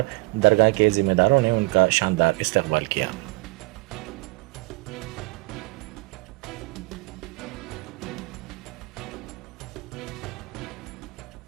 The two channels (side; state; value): left; quieter; 24.8 dB